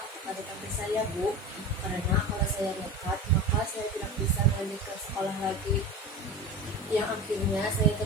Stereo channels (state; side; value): normal; both; correlation 0.29